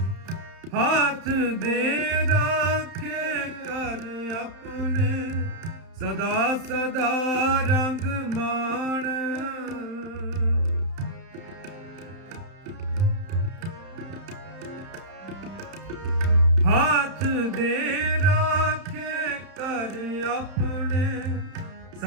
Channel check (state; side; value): late; left; 31 ms